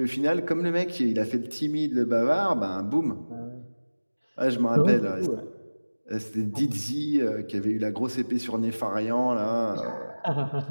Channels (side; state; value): both; inverted; correlation -1.00